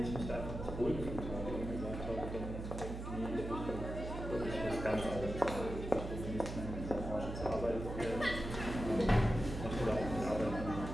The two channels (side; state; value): right; noise; hum, 6 dB below the sound